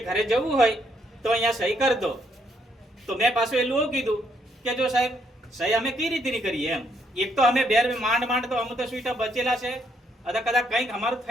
ઘરે જવું હોય તો અહીંયા સહી કરી દો. તો મેં પાછું એટલું એવું કીધું કે જો સાહેબ સહી અમે કઈ રીતે નહીં કરીએ એમ. એક તો અમે માંડ તો અમે તો સુઈટા બચેલા છે, કદાચ કંઈક અમારું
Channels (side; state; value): both; normal; correlation 0.72